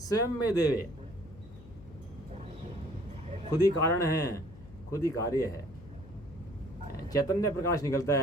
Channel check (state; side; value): noise; left; hum, 19 dB below the sound